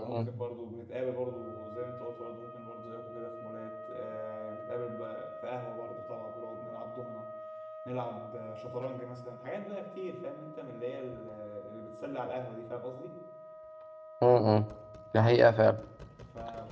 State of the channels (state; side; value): identical; both; correlation 1.00